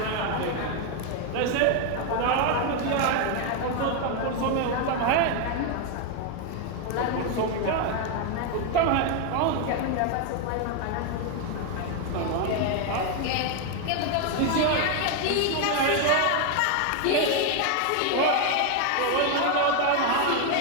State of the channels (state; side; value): different; both; correlation 0.01